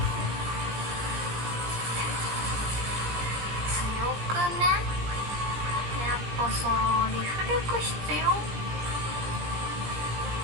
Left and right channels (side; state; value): left; late; 17 ms